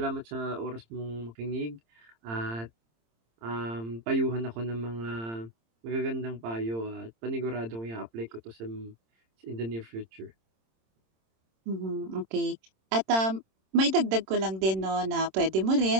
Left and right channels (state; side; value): late; left; 26 ms